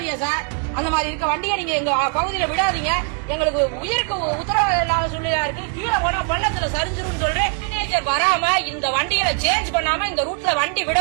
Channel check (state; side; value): quieter; left; 36.0 dB